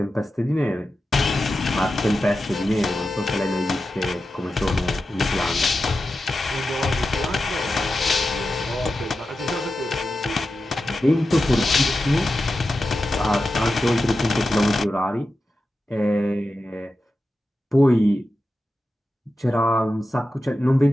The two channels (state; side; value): normal; both; correlation 0.92